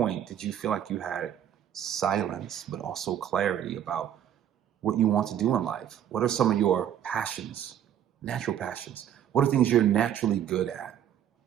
did you feel like you had silence, but also clarity about what you want to do in life? What are some of your passions, natural passions? What are things you're naturally good at?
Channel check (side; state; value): left; quieter; 10.1 dB